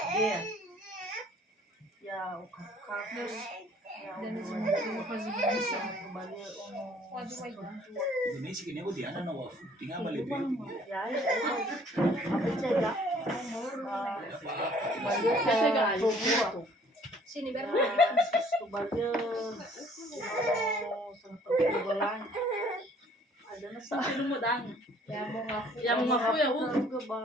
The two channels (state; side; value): normal; both; correlation 0.57